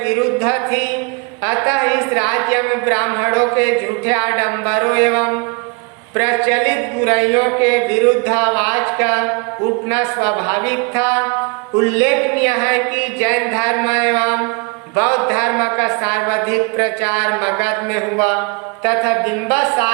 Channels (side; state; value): left; quieter; 32.0 dB